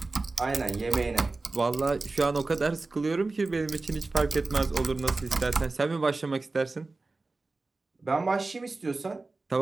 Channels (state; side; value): quieter; left; 3.5 dB